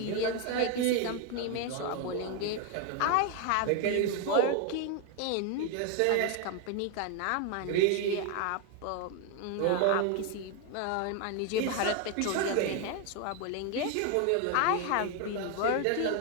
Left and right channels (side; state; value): both; different; correlation 0.01